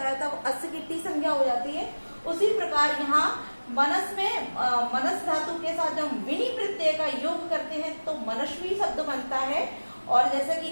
है तब अस की टी संज्ञा हो जाती है। उसी प्रकार यहाँ मनस में मनस धातु के साथ जब हम विनी प्रत्यय का योग करते हैं तो मनस्वी शब्द बनता है। और जैसे कि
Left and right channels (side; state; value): both; inverted; correlation -1.00